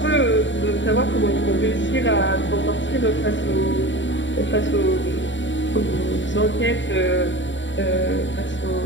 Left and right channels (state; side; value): late; right; 0.54 ms